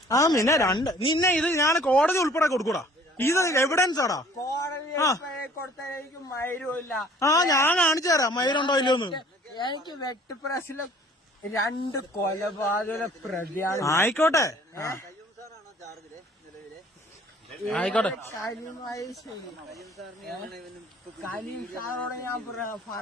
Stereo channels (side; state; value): both; normal; correlation 0.53